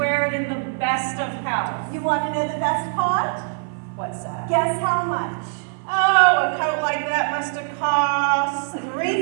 it in the best of health. You want to know the best part? What's that? Guess how much? Oh, a coat like that must have cost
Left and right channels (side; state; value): left; silent; 60 dB below the other